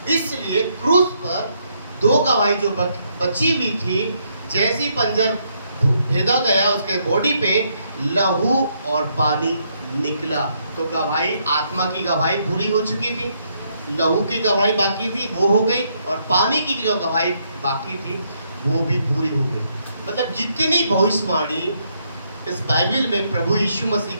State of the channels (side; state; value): both; inverted; correlation -0.74